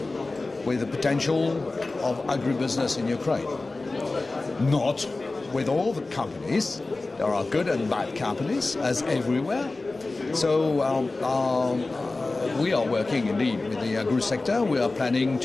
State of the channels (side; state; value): right; quieter; 3.3 dB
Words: with the potential of agribusiness in Ukraine. Not with all the companies. There are good and bad companies, as everywhere. So we are working indeed with the agri sector. We are planning